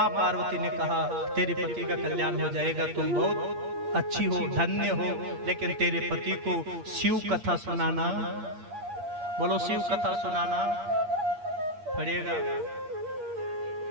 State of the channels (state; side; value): late; left; 8.4 ms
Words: पार्वती ने कहा, तेरे पति का कल्याण हो जाएगा, तुम बहुत अच्छी हो, धन्य हो, लेकिन तेरे पति को शिव कथा सुनाना, बोलो शिव कथा सुनाना पड़ेगा।